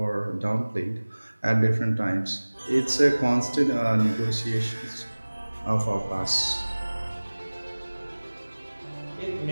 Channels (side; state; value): both; inverted; correlation -1.00